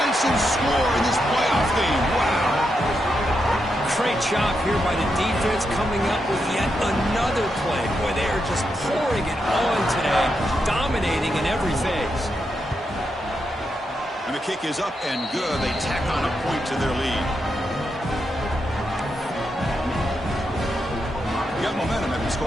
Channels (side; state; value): both; normal; correlation 0.84